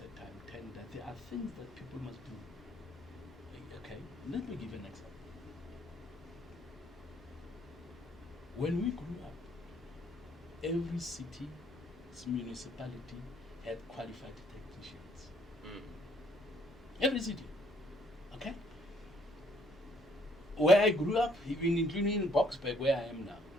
time, tender. There are things that people must do. Okay, let me give an example. When we grew up, every city, municipality had qualified technicians. Every city. Okay? Where I grew up, even including in Boksburg, where I am now,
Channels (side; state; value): both; normal; correlation 0.65